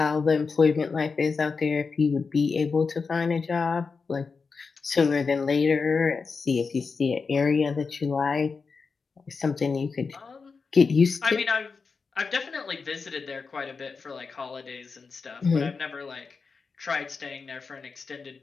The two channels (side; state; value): right; quieter; 4.8 dB